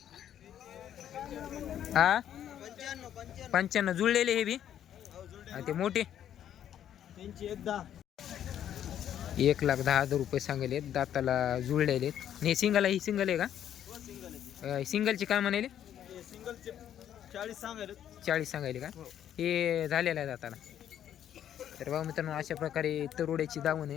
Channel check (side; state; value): right; quieter; 10.3 dB